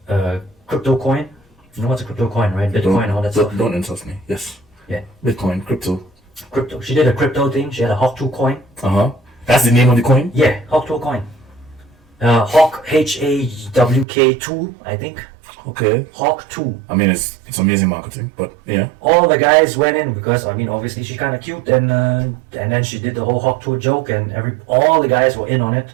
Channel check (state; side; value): drops out; left; at 14.1 s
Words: crypto coin. You know what's a crypto coin, right? Bitcoin and all that stuff. Don't insult me. Yes. Yeah. Bitcoin, crypto. Crypto. She did a crypto thing. She had a Hawk 2 coin. That's the name of the coin? Yeah, Hawk 2 coin. Hawk HAWK2, I think. Okay. Hawk 2. I mean, it's amazing marketing, but yeah. All the guys went in because I mean obviously she's kind of cute and then she did the whole Hawk 2 joke and all the guys were in on it.